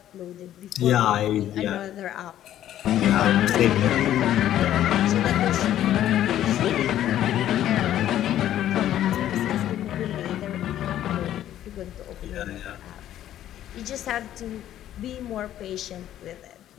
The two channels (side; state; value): right; quieter; 12.0 dB